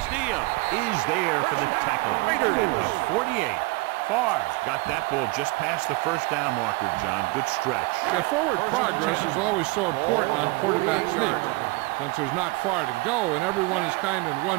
is there for the tackle. At the 48. Farr got that ball just past the first down marker, John. Good stretch. Yeah, forward progress is always so important on quarterback sneaks. Since there's not far to go and everyone is kind of in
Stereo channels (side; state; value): left; quieter; 23.8 dB